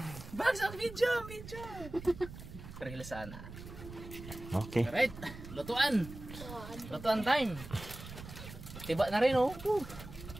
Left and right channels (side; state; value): right; noise; rumble, 13 dB below the sound